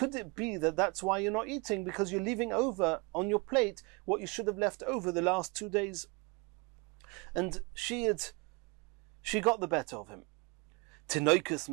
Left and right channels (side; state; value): left; quieter; 29.0 dB